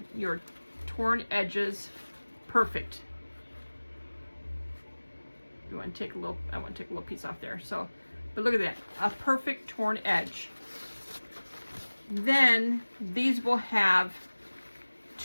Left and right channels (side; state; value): both; inverted; correlation -1.00